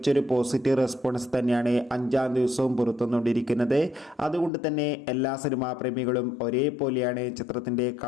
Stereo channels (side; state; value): right; drops out; at 4.5 s